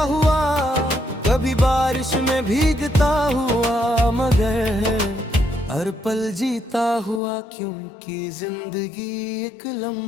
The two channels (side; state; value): right; drops out; at 7.2 s